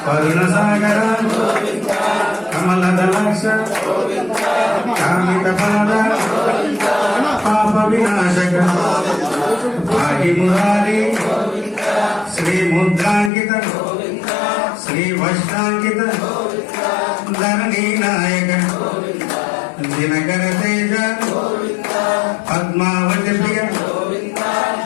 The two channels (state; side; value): drops out; right; at 13.3 s